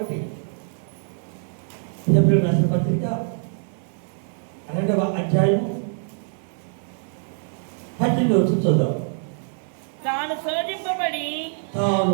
హెబ్రీయులకు రాసిన పత్రిక 2వ అధ్యాయం 18వ వచనం చూద్దాం. తాను శోధింపబడి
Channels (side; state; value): left; silent; 62 dB below the other